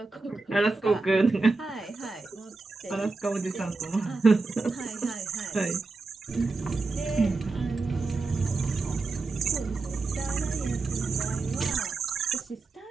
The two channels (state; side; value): quieter; left; 3.7 dB